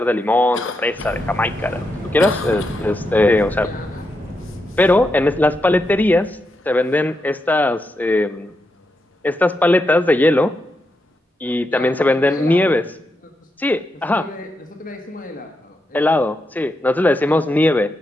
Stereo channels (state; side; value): normal; both; correlation 0.84